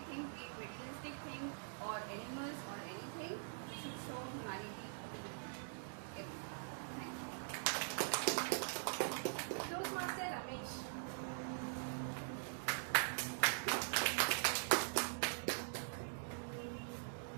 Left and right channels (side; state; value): left; silent; digital silence